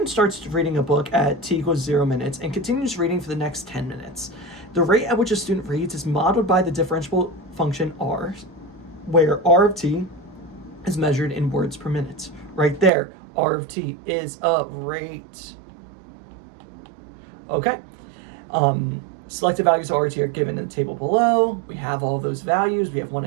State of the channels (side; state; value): left; drops out; at 12.9 s